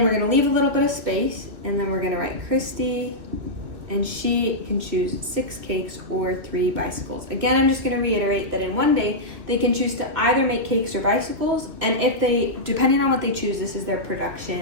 we're gonna leave a little bit of space, and then we're gonna write Christy, and she can choose 6 cakes or 3 bicycles. Again, I'm just gonna reiterate that in one day, they can choose to either make cakes or bicycles, and if they, depending on what they choose, this is their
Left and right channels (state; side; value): late; left; 2.9 ms